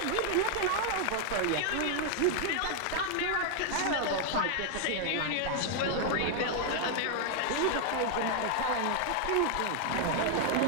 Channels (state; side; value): different; both; correlation 0.00